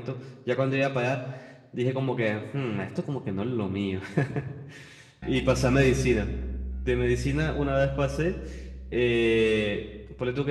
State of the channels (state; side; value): identical; both; correlation 1.00